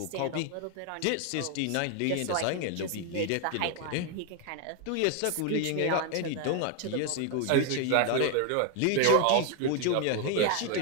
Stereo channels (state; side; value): different; both; correlation 0.01